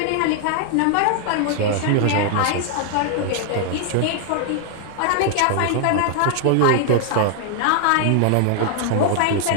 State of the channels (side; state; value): both; different; correlation 0.00